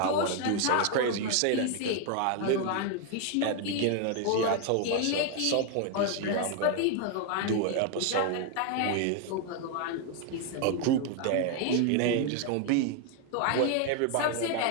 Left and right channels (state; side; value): different; both; correlation 0.00